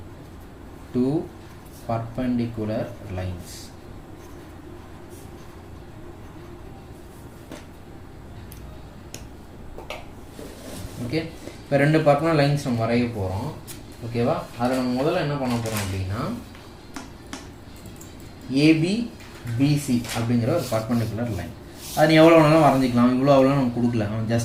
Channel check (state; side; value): identical; both; correlation 1.00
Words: two perpendicular lines. Okay. இப்போ 2 பர்பெண்டிகுலர் லைன்ஸ் நம்ம வரைய போகிறோம். ஓகேவா? அதில் நம்ம முதல்ல என்ன பண்ண போகிறோம் அப்படின்னா, ஏபி பிசி அப்படிங்கிற ஒரு பர்பெண்டிகுலர் லைன். அது நீ எவ்வளோ வேணாலும் வரைஞ்சிக்கலாம். இவ்வளோ அவ்வளோ நம்ம கொடுக்கல,